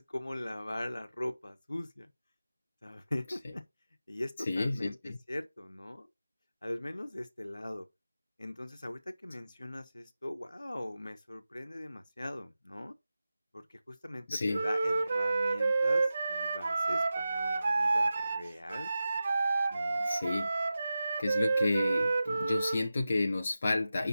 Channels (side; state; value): both; inverted; correlation -0.93